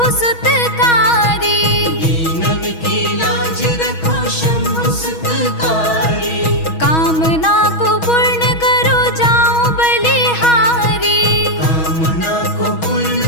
सुतकारी। दीनन की लाज रखो शंभु सुतकारी। कामना को पूर्ण करो जाओ बलिहारी। कामना को पूर्ण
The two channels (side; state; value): right; late; 6.3 ms